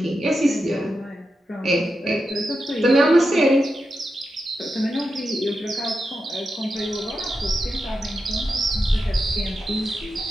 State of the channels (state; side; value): normal; both; correlation 0.88